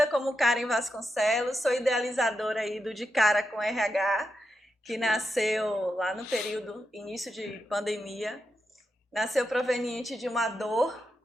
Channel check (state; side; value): normal; both; correlation 0.86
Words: como Karen Vasconcelos, sou idealizadora aí do De Cara com RH, que nasceu lá no período início de pandemia. Nasceu proveniente de uma dor